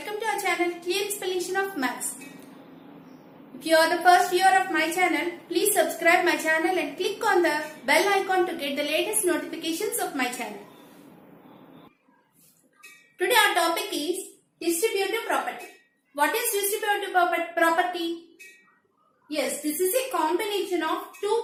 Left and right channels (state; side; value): identical; both; correlation 1.00